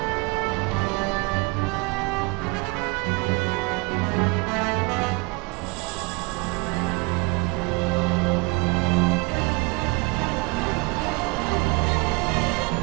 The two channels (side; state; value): left; quieter; 27.5 dB